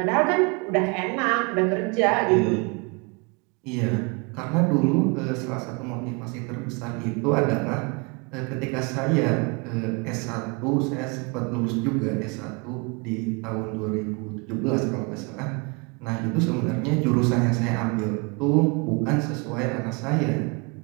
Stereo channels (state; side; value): quieter; left; 31.3 dB